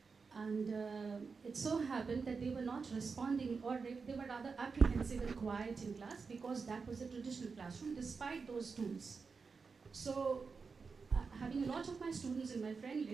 And it so happened that they were not responding, or they were rather apprehensive and quiet in class because that was a traditional classroom despite those tools. So having a lot of my students in my friend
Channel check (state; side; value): quieter; left; 4.9 dB